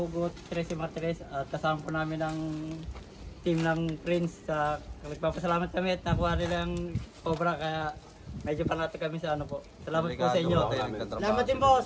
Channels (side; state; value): both; identical; correlation 1.00